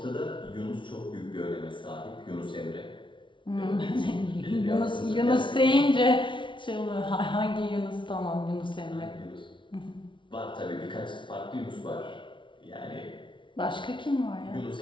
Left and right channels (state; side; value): late; right; 0.24 ms